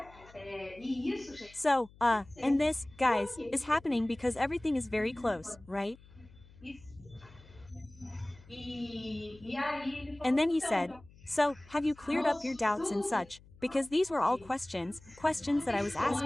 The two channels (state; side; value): noise; left; hum, 23 dB below the sound